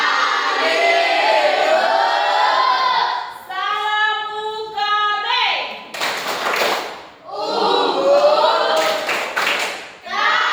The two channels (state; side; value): identical; both; correlation 1.00